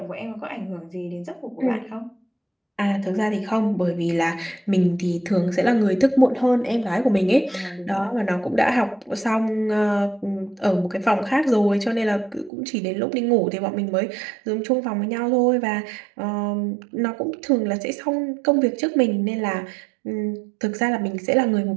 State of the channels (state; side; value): drops out; left; at 12.5 s